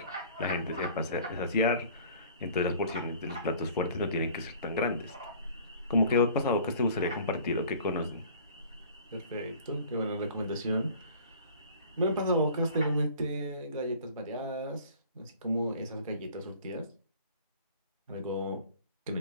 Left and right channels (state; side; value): inverted; both; correlation -0.48